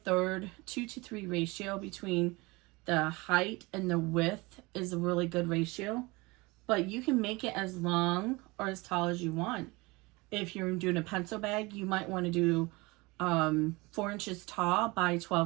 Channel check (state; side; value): quieter; left; 24.0 dB